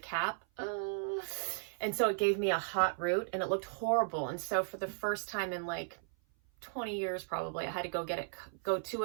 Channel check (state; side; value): silent; left; 54 dB below the other